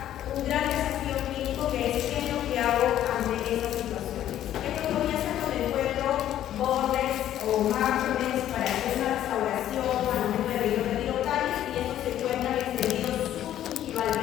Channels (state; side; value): quieter; right; 11.8 dB